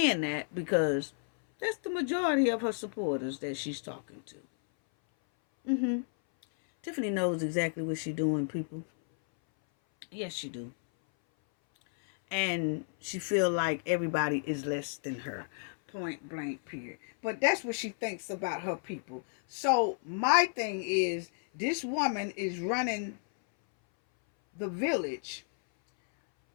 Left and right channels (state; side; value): silent; right; 56 dB below the other